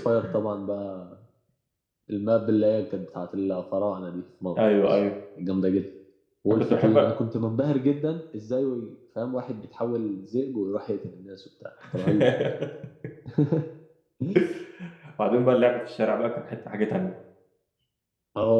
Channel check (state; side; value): identical; both; correlation 1.00